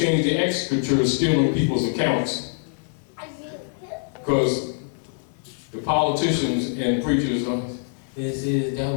the executors stealing people's accounts. Because the politicians and preachers, this is the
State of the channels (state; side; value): silent; right; 59 dB below the other